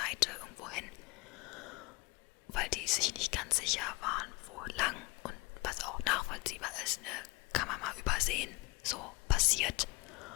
irgendwo hin. Weil die sich nicht ganz sicher waren, wo lang. Und was auch nachvollziehbar ist, ne, kann man mal übersehen. So passiert.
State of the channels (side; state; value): right; quieter; 24.3 dB